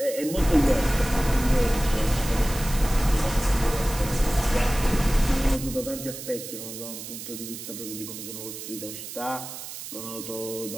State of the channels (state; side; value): noise; right; hiss, 10 dB below the sound